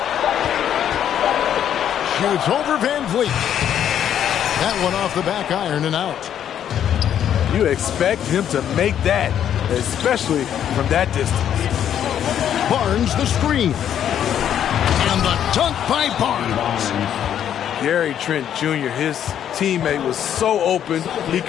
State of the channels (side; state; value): right; quieter; 9.8 dB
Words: Shoots over Van Vliet. That one off the back iron and out. You expect him to make that, especially from that distance. Barnes the screen. And the dunk by Barnes. Gary Trent Jr., his teammate, was so open he